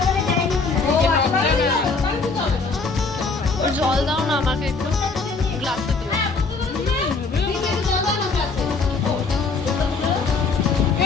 জল দাও না আমাকে একটু, গ্লাসে দিও।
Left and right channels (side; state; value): right; quieter; 4.2 dB